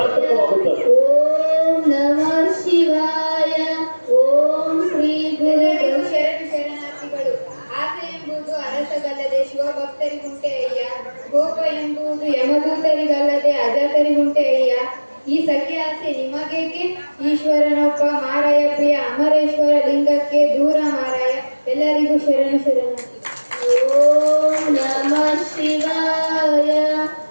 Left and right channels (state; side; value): inverted; both; correlation -1.00